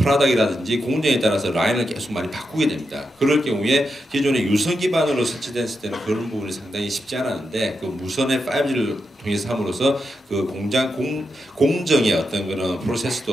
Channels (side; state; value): both; normal; correlation 0.86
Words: 공정에 따라서 라인을 계속 많이 바꾸게 됩니다. 그럴 경우에 기존에 유선 기반으로 설치됐을 때는 그런 부분이 상당히 쉽지 않았는데 그 무선의 5G를 통해서 함으로써 그 공정의 어떤 그런